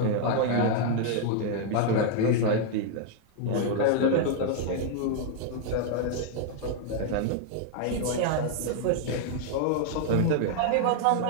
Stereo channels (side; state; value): both; different; correlation 0.00